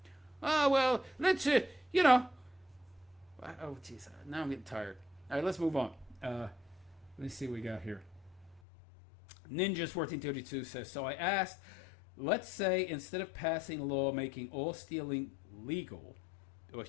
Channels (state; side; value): drops out; right; at 8.6 s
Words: Oh, well, let's, oh, jeez, now I'm getting tired. All right, let's move on. Let me see what we got here. Ninjas 1432 says, so I asked, let's say instead of passing a law making all stealing legal, well,